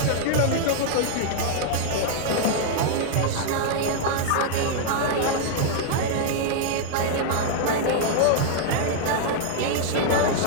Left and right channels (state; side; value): different; both; correlation 0.00